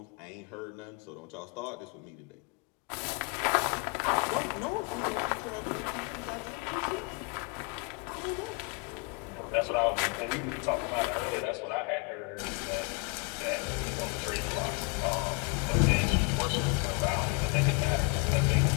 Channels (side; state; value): right; quieter; 31.0 dB